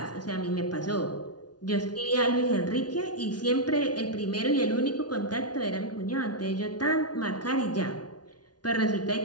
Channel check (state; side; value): late; right; 0.69 ms